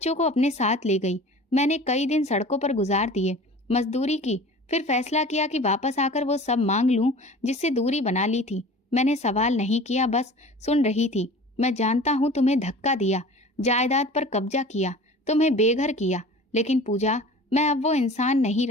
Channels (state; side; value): normal; both; correlation 0.41